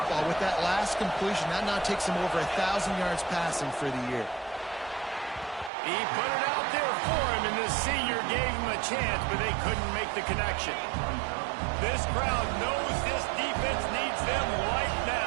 With that last completion, that now takes him over 1,000 yards passing for the year. He put it out there for him, and the senior gave him a chance, but they couldn't make the connection. This crowd knows this defense needs them right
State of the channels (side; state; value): left; drops out; at 5.7 s